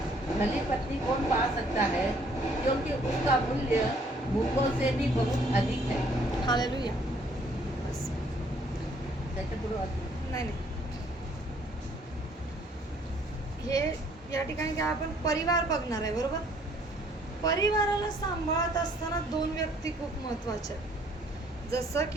भली पत्नी कौन पा सकता है, क्योंकि उसका मूल्य मूंगों से भी बहुत अधिक है. हालेलुया. बस. त्याच्या पुढे नाही नाही, हे या ठिकाणी काय आपण परिवार बघणार आहे, बरोबर. परिवाराला सांभाळत असताना 2 व्यक्ती खूप महत्वाच्या आहेत, जसं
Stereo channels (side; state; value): both; normal; correlation 0.62